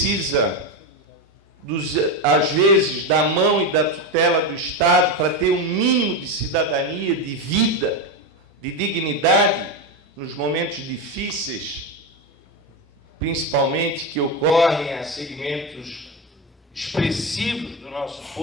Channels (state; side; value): normal; both; correlation 0.13